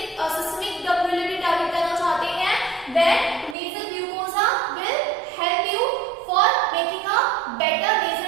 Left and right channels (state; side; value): drops out; left; at 3.6 s